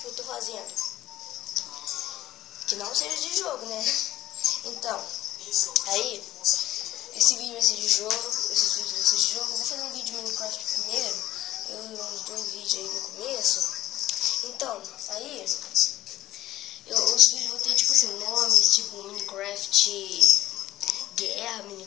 eu tô fazendo. Que não seja de jogo, né? Então, aí, esse vídeo vai ser de jogo, esses vídeos vão ser de jogo. Eu vou fazer um vídeo de Minecraft primeiro, uns 2 vídeos aí no começo. Então, aí, os vídeos vão ter, tipo assim, nomes, tipo Minecraft Guerra,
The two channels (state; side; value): quieter; right; 14.6 dB